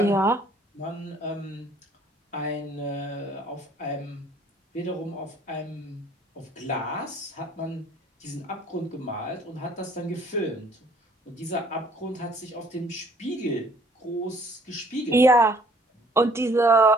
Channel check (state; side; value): normal; both; correlation 0.58